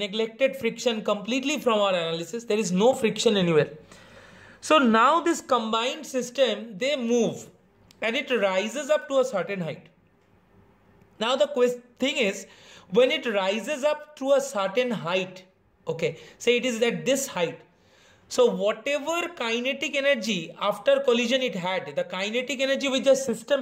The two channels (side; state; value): both; identical; correlation 1.00